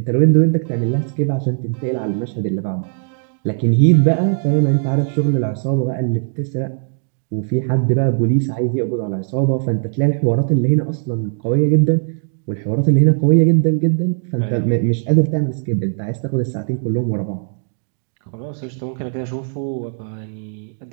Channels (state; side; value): silent; left; digital silence